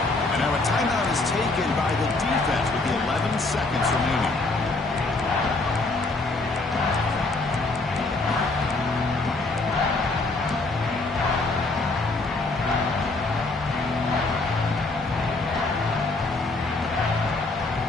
And now a timeout is taken by the defense with the 11 seconds remaining.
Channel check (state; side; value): quieter; right; 3.3 dB